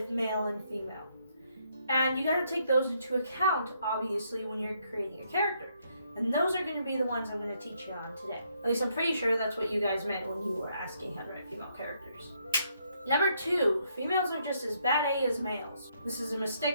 male and female. And you got to take those into account, obviously, when you're creating a character. And those are going to be the ones I'm going to teach you on today. At least I'm pretty sure that's what you guys meant when you were asking how to write female characters. Number 2, females are just as bad A as males. This is a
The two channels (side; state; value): both; inverted; correlation -0.73